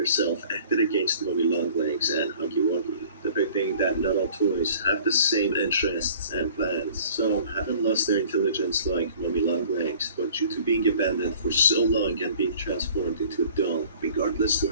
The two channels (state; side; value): inverted; both; correlation -0.50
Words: acted against Mummy Longlegs and Huggy Wuggy, depicting that not all toys have the same interests and plans. Some haven't lost their intelligence like Mummy Longlegs, but due to being abandoned for so long and being transformed into a doll, regardless to